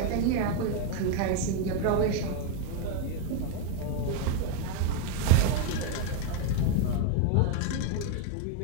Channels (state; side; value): different; both; correlation 0.01